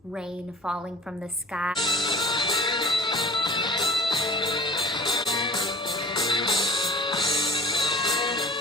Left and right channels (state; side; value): normal; both; correlation 0.43